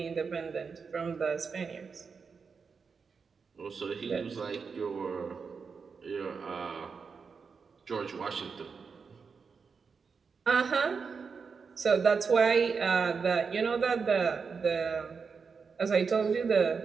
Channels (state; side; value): quieter; left; 5.4 dB